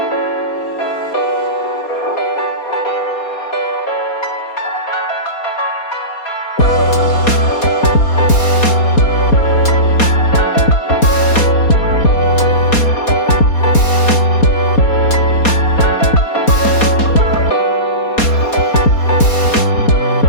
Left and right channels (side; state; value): right; late; 4.2 ms